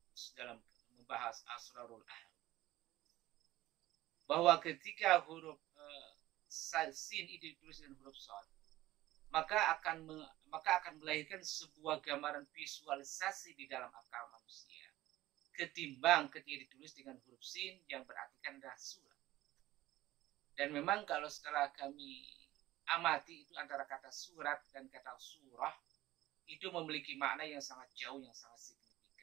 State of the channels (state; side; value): quieter; left; 16.3 dB